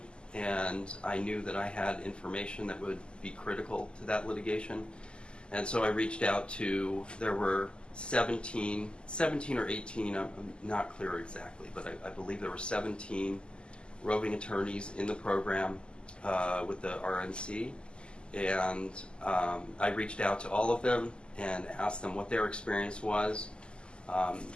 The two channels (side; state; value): right; late; 0.050 ms